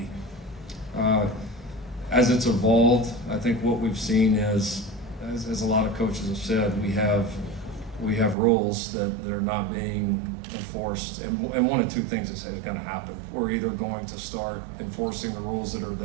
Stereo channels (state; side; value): drops out; left; at 8.3 s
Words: As it's evolved, I think what we've seen is, as a lot of coaches have said, we have rules that are not being enforced, and one of two things is going to happen. We're either going to start enforcing the rules that are